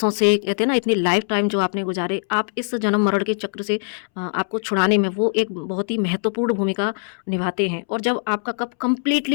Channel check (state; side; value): silent; right; 64 dB below the other